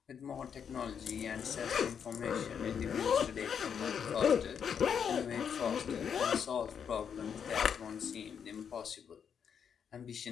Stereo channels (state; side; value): quieter; right; 7.5 dB